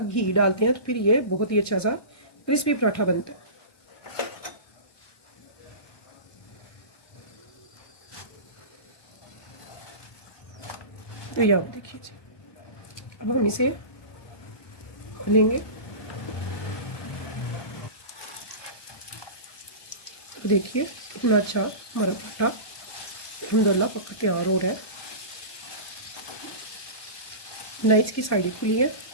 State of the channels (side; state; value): right; late; 1.2 ms